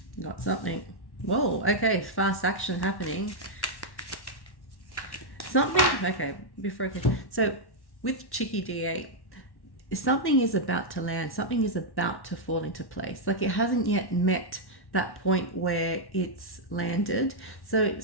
Got something. Whoa, okay, fast action happening. Okay, before I can. So with Chicky D8, something is about to land. Something is about to fall into place. Like, it hasn't yet met that point where it's landed. So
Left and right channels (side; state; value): right; late; 1.1 ms